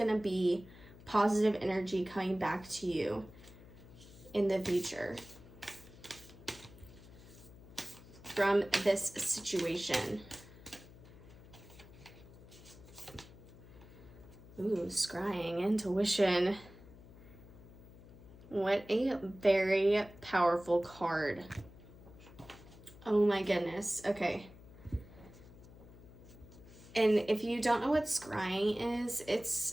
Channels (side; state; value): left; noise; hum, 19 dB below the sound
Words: to be positive energy coming back to you in the future from this situation. Ooh, scrying, intuition. What a very powerful card. Oh my goodness. Okay. And if you don't know what scrying is,